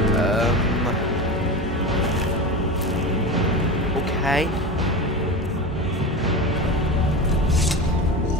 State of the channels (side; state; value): both; normal; correlation 0.25